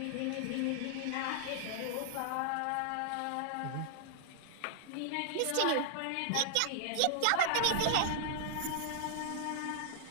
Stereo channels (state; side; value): different; both; correlation -0.01